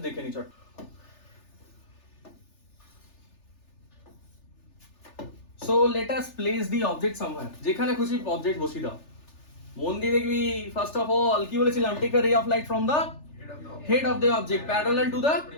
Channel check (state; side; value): late; right; 3.4 ms